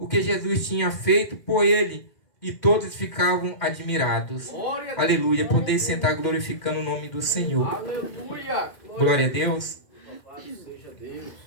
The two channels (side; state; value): right; late; 2.2 ms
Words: que Jesus tinha feito por ele, e todos ficavam admirados. Glória a Deus. Aleluia. Poder sentar glorificando o nome do Senhor. Aleluia. Glória a Deus. Louvado seja Deus.